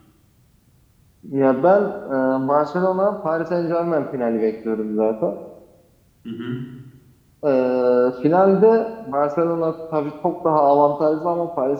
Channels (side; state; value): both; identical; correlation 1.00